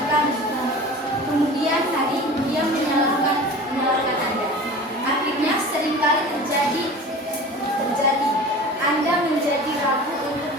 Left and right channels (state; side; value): normal; both; correlation 0.37